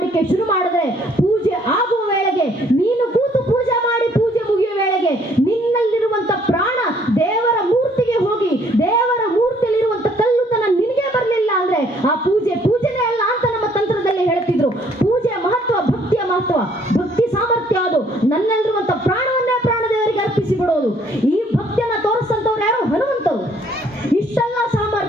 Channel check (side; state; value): both; normal; correlation 0.63